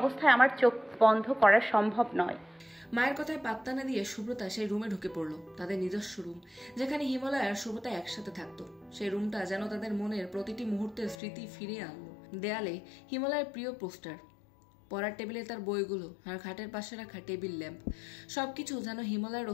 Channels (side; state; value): right; drops out; at 11.2 s